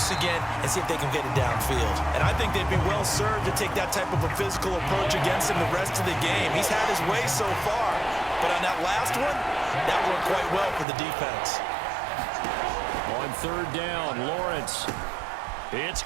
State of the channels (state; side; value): drops out; left; at 10.9 s